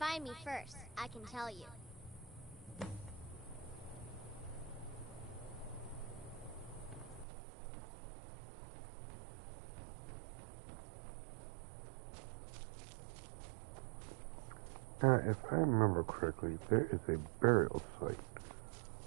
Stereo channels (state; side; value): drops out; left; at 7.2 s